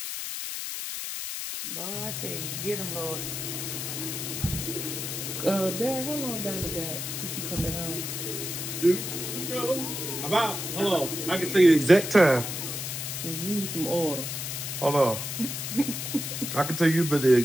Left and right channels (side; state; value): left; noise; hiss, 5 dB below the sound